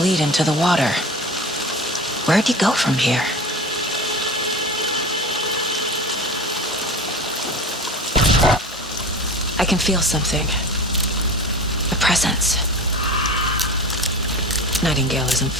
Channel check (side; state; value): both; normal; correlation 0.33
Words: into the water. Where'd he go from here? I can feel something. A presence. Nightingale isn't